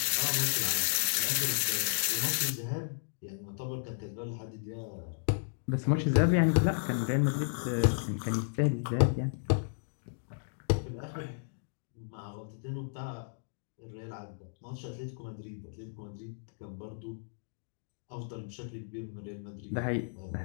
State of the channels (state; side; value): silent; right; digital silence